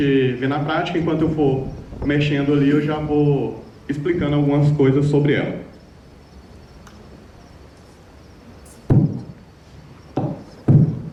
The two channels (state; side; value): identical; both; correlation 1.00